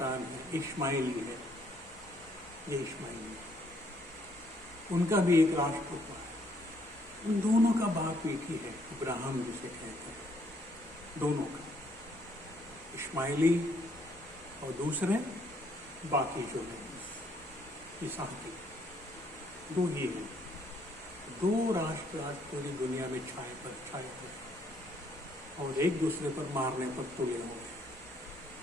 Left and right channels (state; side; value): normal; both; correlation 0.68